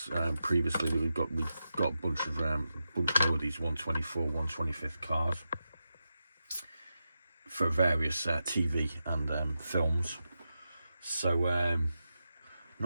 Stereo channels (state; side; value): inverted; both; correlation -0.89